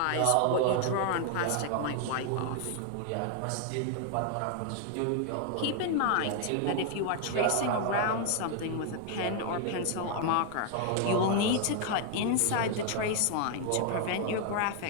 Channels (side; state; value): both; different; correlation 0.00